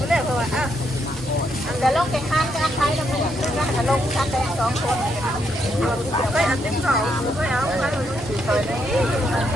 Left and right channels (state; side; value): normal; both; correlation 0.77